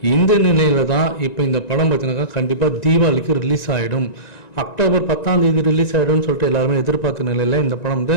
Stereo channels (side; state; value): right; late; 1.9 ms